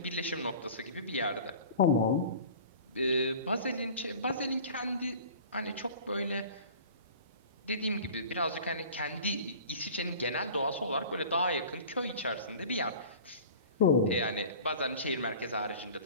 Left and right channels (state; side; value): inverted; both; correlation -0.42